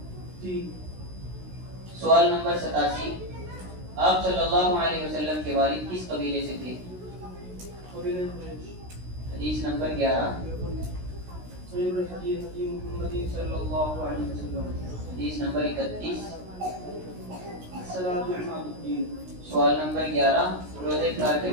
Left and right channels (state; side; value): late; left; 16 ms